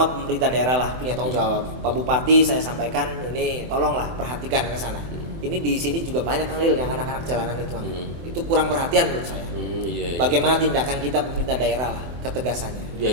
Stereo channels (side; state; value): left; late; 24 ms